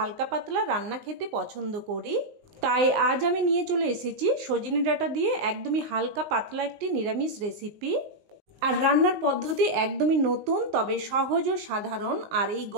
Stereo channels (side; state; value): left; late; 19 ms